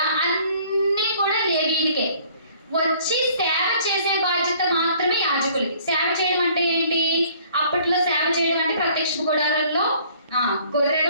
అన్నీ కూడా లేవీయులకే. వచ్చి సేవ చేసే బాధ్యత మాత్రమే యాజకులకి. సేవ చేయడం అంటే ఏంటి? అప్పట్లో సేవ చేయడం అంటే ప్రత్యక్ష గుడారంలో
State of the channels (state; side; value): inverted; both; correlation -0.56